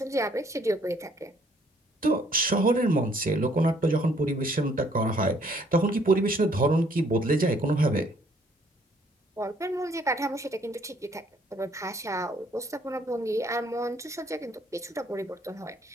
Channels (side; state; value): both; normal; correlation 0.64